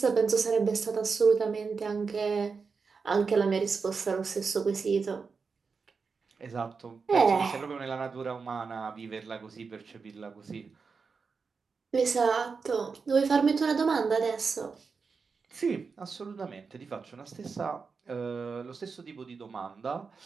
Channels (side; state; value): left; quieter; 5.1 dB